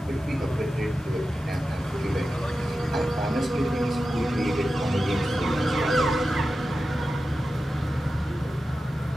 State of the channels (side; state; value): both; normal; correlation 0.92